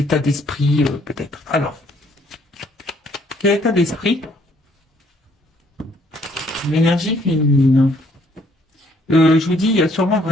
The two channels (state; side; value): normal; both; correlation 0.64